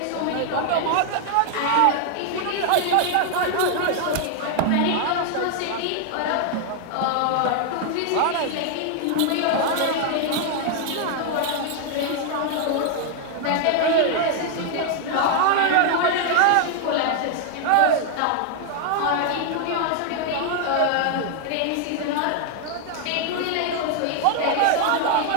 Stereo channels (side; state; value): both; different; correlation 0.00